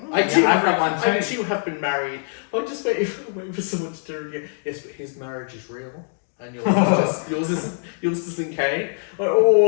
I too I've have got one I too. too have been married. I'm just waiting for someone to turn again. Yes, but his marriage is real. And yours isn't Kane.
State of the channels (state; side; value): silent; right; digital silence